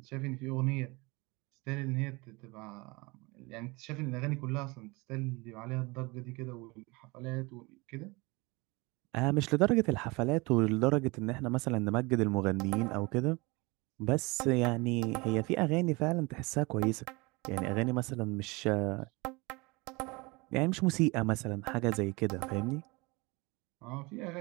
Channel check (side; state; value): left; quieter; 25.4 dB